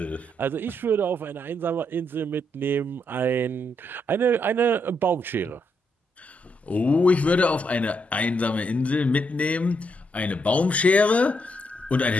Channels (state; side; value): normal; both; correlation 0.78